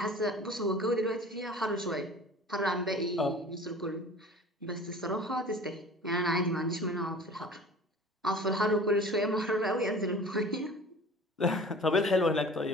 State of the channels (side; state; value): both; normal; correlation 0.42